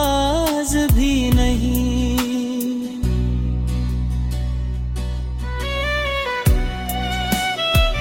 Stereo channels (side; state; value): both; identical; correlation 1.00